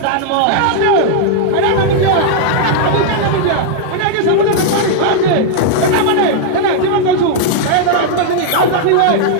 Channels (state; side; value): different; both; correlation -0.01